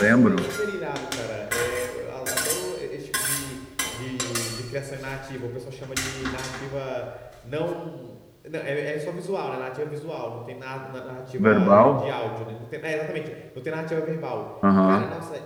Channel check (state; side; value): identical; both; correlation 1.00